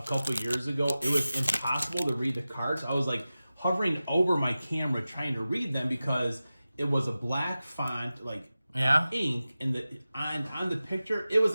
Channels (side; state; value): both; inverted; correlation -0.95